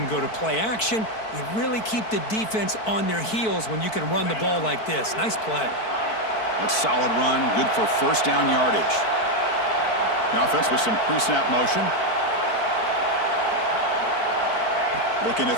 go to play action. You really keep the defense on their heels when you can run the ball like this. Nice play. A solid run, good for first down yardage. The offense with some pre-snap motion. Looking to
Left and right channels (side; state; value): right; late; 4.5 ms